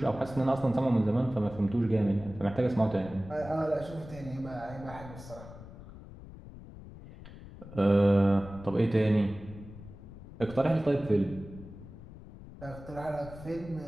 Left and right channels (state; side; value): noise; left; rumble, 16 dB below the sound